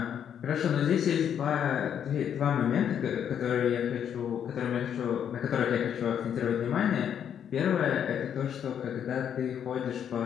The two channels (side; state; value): right; quieter; 8.8 dB